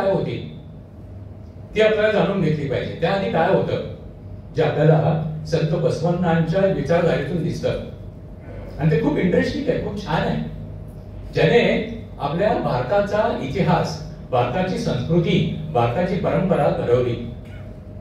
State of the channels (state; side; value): identical; both; correlation 1.00